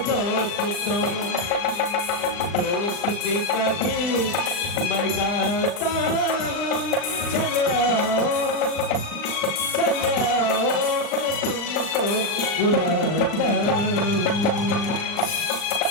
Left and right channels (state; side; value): late; right; 39 ms